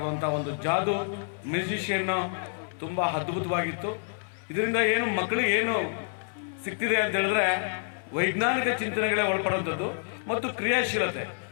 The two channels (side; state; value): right; silent; 59 dB below the other